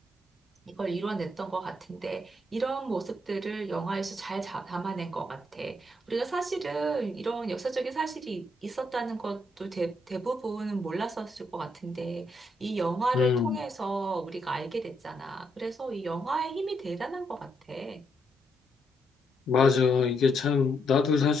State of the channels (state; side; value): normal; both; correlation 0.77